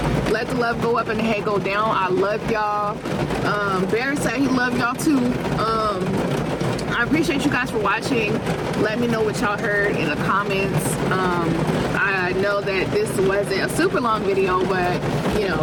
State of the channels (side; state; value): both; identical; correlation 1.00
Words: Let the love go up and the hate go down. I love y'all. Bear said he loved y'all too. I appreciate you guys for watching. Let me know what y'all heard in the comments. I know that this wasn't a super long video, but you